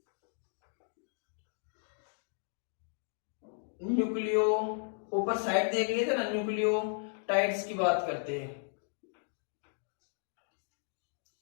न्यूक्लियो, ऊपर साइड देख लिए थे ना, न्यूक्लियोटाइड्स की बात करते हैं।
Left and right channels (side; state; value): right; silent; digital silence